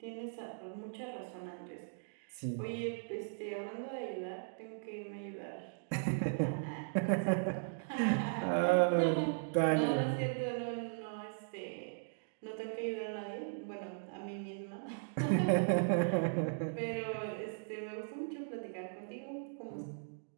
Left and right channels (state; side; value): silent; left; digital silence